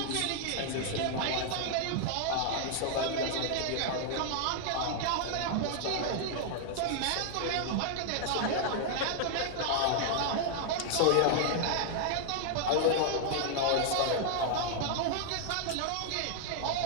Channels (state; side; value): different; both; correlation 0.00